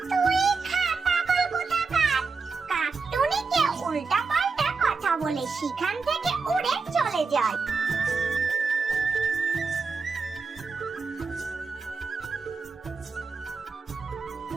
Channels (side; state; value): left; quieter; 4.6 dB